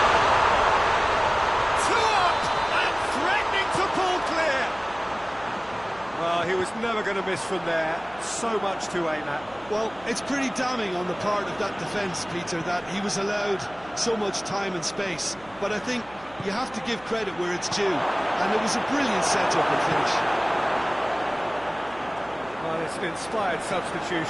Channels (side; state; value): right; noise; hum, 23 dB below the sound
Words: Two up and threatening to pull clear. Well, he was never going to miss from there. So much to aim at. Well, it's pretty damning on the part of that defence, Peter, that he was allowed so much time and space. But I think you have to give credit where it's due, and it was a brilliant setup and finish. Well, it's an inspired